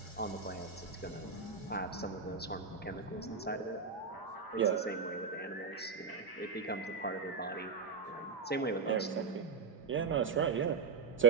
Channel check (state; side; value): quieter; left; 4.6 dB